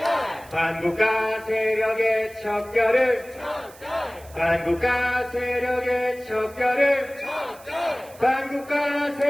한국가 세력의 척결을 한국가 세력의 척결을 한국가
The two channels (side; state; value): right; noise; hiss, 23 dB below the sound